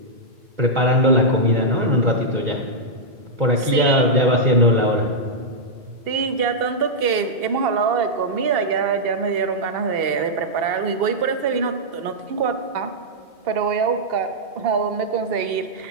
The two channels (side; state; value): left; late; 2.7 ms